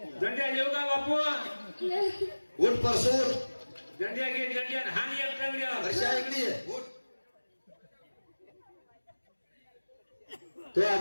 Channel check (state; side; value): inverted; both; correlation -1.00